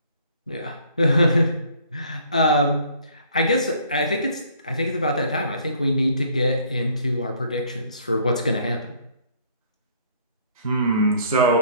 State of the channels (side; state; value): both; inverted; correlation -0.59